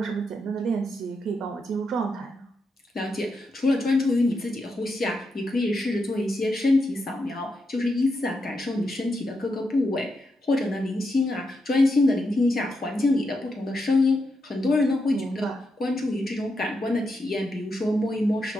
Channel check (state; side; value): normal; both; correlation 0.84